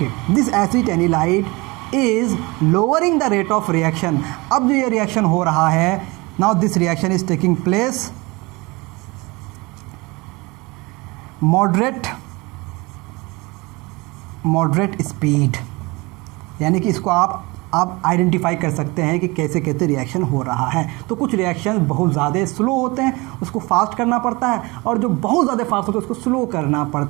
this acetanilide is lowering the rate of reaction. अब जो ये रिएक्शन हो रहा है, now this reaction is taking place moderate speed, यानी कि इसको आप आइडेंटिफाई कर सकते हैं कि कैसे कैसे रिएक्शन हो रहा है। तो कुछ रिएक्शन बहुत ज़्यादा स्लो होते हैं, उसको फास्ट करना पड़ता है, और जो बहुत ज़्यादा फास्ट होते हैं उसको स्लो करना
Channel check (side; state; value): left; quieter; 24.6 dB